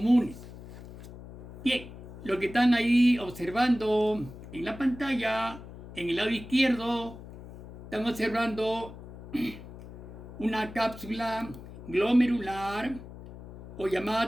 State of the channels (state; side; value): noise; left; hum, 14 dB below the sound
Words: Bien, lo que están ahí observando en la pantalla, en el lado izquierdo, están observando una cápsula glomerular o llamada